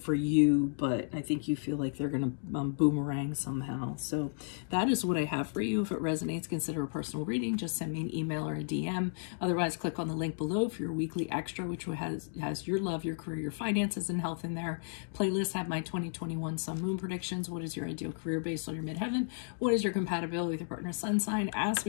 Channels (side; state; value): right; silent; digital silence